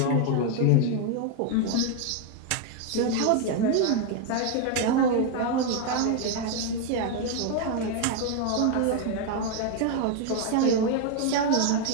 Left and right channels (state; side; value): different; both; correlation 0.01